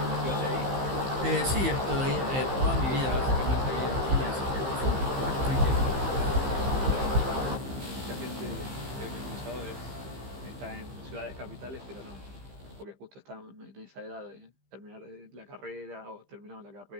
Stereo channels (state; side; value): late; left; 15 ms